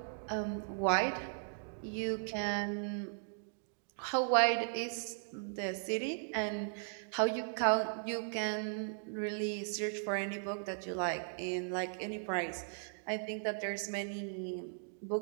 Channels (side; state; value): left; silent; digital silence